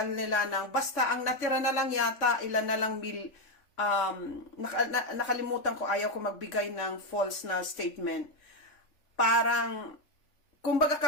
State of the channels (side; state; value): right; late; 3.4 ms